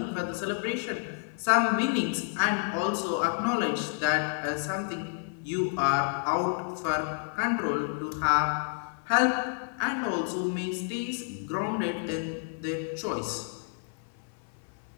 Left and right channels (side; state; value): right; silent; 56 dB below the other